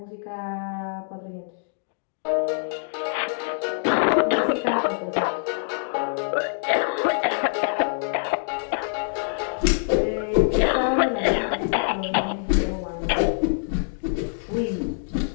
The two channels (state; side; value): silent; right; digital silence